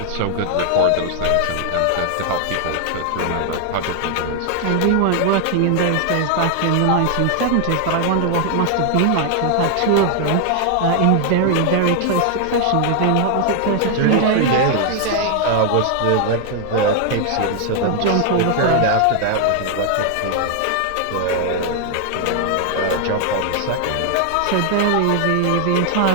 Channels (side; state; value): both; different; correlation 0.00